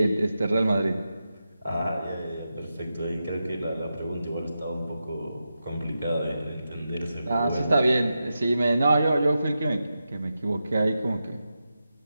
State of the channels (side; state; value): both; inverted; correlation -0.90